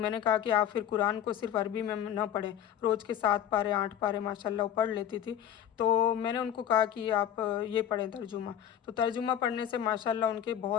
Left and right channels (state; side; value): quieter; right; 10.1 dB